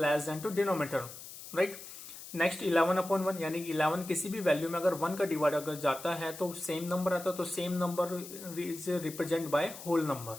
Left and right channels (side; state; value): left; noise; hiss, 13 dB below the sound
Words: less than to denominator, right? Next 11/1, यानी 11 किसी भी value में अगर 1 का डिवाइड अगर जाता है तो सेम नंबर आता है, तो same number is represent by whole number.